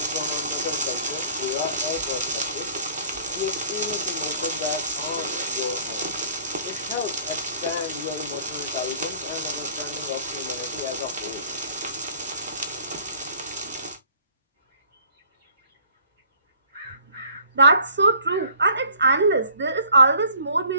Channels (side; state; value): both; inverted; correlation -0.54